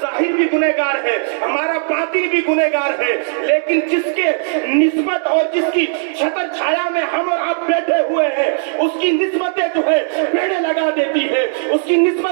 ظاہر بھی گنہگار ہے، ہمارا باطن بھی گنہگار ہے، لیکن جس کے نسبت اور جس کی چھتر چھایا میں ہم اور آپ بیٹھے ہوئے ہیں اس کی نسبتیں پیڑے لگا دیتی ہے، اس کی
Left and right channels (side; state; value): left; silent; digital silence